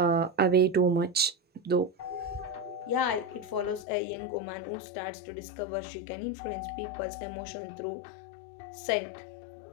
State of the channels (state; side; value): drops out; right; at 3.9 s